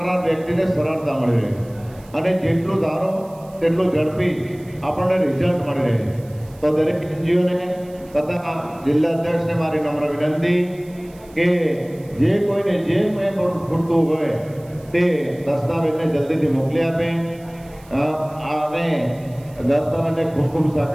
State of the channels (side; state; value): right; noise; hiss, 27 dB below the sound